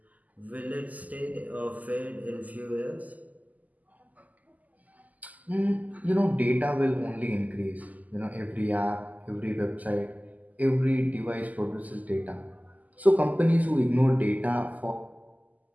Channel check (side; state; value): left; late; 0.078 ms